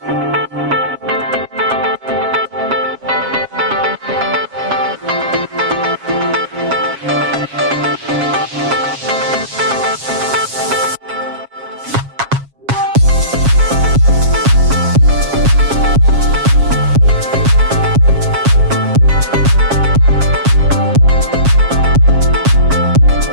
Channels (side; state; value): left; late; 7.3 ms